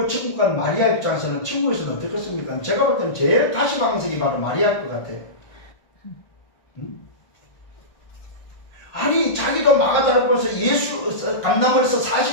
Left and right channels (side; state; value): right; late; 1.5 ms